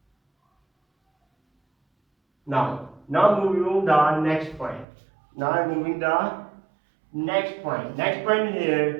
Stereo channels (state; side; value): drops out; left; at 4.9 s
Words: Now moving on the next point. Now I'm moving the next point. Next point